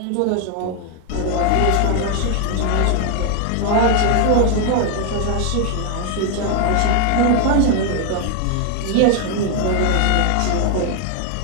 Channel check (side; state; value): both; different; correlation 0.00